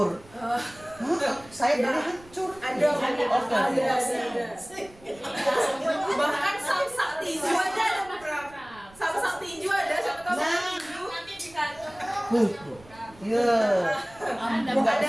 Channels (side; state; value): right; noise; rumble, 24 dB below the sound